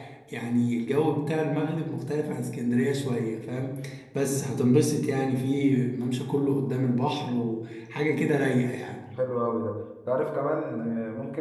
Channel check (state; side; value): identical; both; correlation 1.00